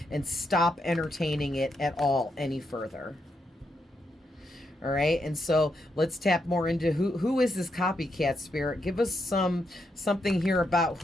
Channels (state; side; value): normal; both; correlation 0.81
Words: and stop entertaining it at all any further. All right, and so let's tap more into who is this copycat, Spirit. Give us something here about